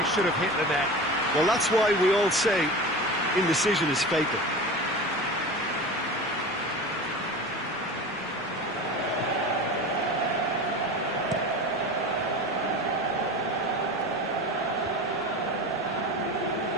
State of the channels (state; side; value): noise; right; rumble, 28 dB below the sound